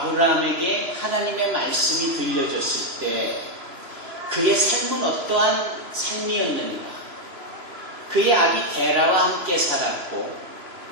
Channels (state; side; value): late; left; 3.0 ms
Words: 하나님의 말씀이 들려졌을 때 그의 삶은 어떠한 삶이었는가? 그의 아비 데라와 함께 살았고